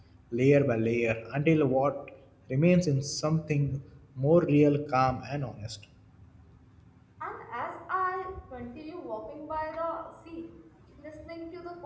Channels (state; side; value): identical; both; correlation 1.00